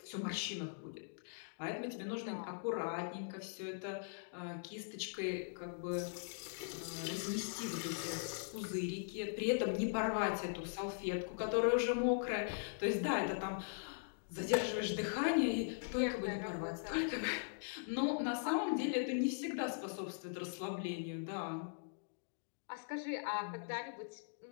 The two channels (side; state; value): right; silent; digital silence